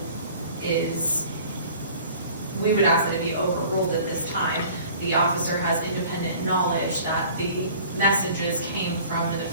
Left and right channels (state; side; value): inverted; both; correlation -0.48